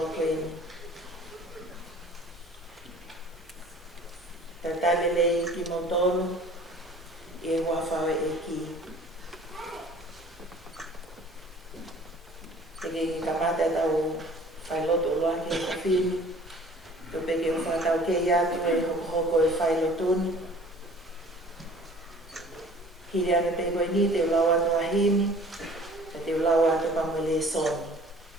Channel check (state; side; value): normal; both; correlation 0.49